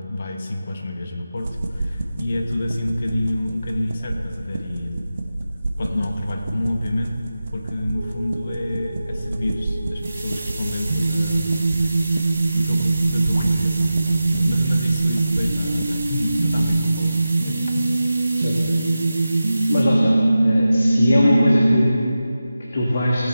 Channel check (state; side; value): inverted; both; correlation -0.93